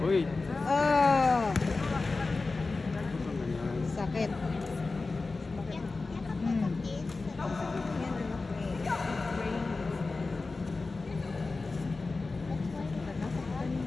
Uy. Oh. Sakit.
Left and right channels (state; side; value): quieter; right; 3.7 dB